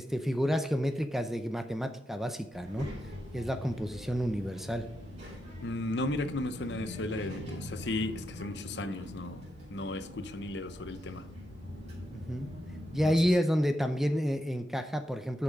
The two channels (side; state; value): both; normal; correlation 0.85